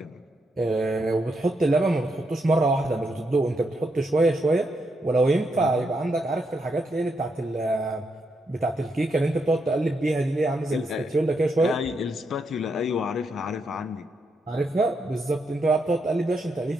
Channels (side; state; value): both; normal; correlation 0.81